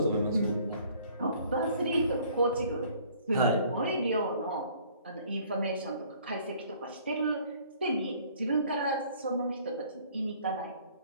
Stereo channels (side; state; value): both; inverted; correlation -0.57